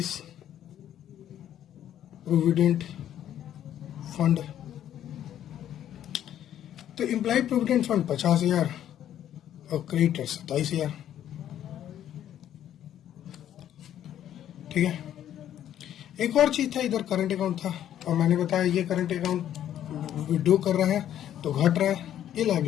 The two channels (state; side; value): quieter; right; 11.0 dB